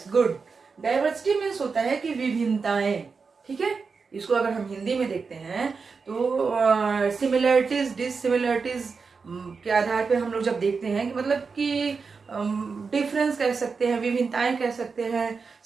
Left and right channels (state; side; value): quieter; left; 5.0 dB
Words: good. Diversity means होता है कि विभिन्नताएं, ठीक है। इसको अगर हम हिंदी में देखते हैं तो सिमिलरिटीज डिससिमिलरिटीज के आधार पे हम लोग जब देखते हैं कि मतलब कि डिफरेंस कह सकते हैं, विभिन्नताएं कह सकते हैं।